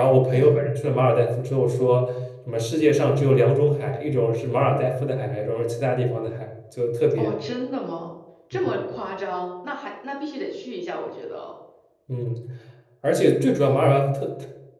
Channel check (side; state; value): both; identical; correlation 1.00